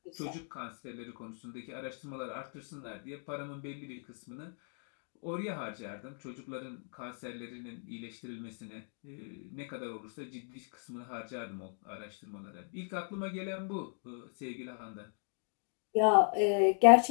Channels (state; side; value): silent; right; 53 dB below the other